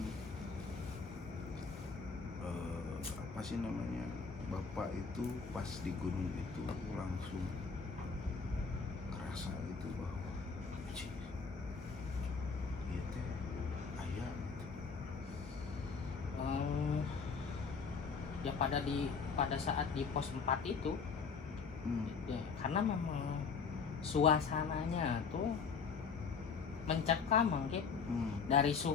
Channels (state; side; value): quieter; right; 5.4 dB